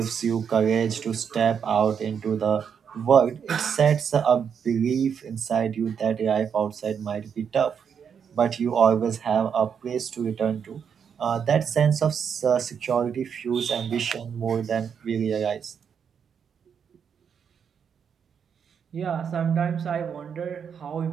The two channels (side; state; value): left; quieter; 7.3 dB